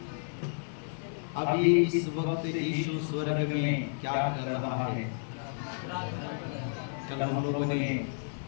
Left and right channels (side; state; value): right; silent; 57 dB below the other